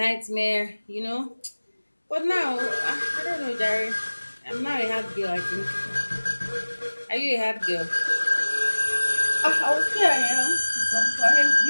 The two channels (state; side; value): inverted; both; correlation -1.00